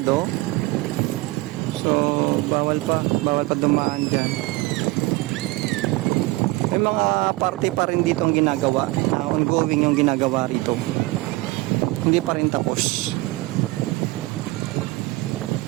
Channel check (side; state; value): left; quieter; 21.1 dB